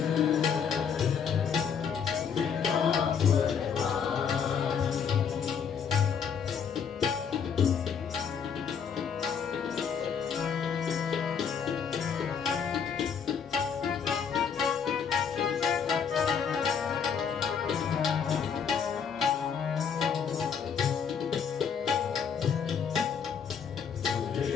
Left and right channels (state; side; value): quieter; right; 6.9 dB